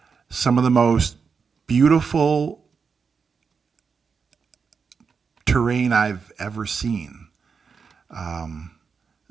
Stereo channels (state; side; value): quieter; left; 5.6 dB